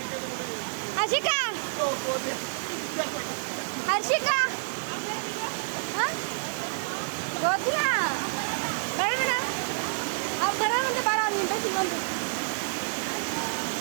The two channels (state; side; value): silent; left; digital silence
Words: ಹರ್ಷಿಕಾ ಹರ್ಷಿಕಾ ಗೊತ್ತಿಲ್ಲ ಬೇಡ ಮೇಡಮ್, ಅವ್ರು ಬರೋ ಮುಂದೆ ಬೇಡ, ಅವ್ನು ಇಂಟ್ರೆಸ್ಟ್ ಇಲ್ವಂತು.